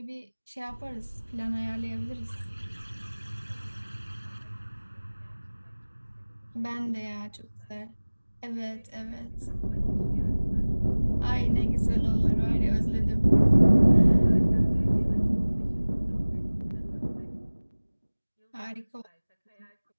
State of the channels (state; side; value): inverted; both; correlation -1.00